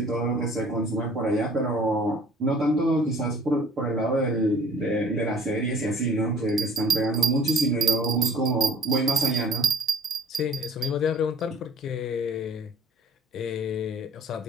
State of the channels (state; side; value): normal; both; correlation 0.51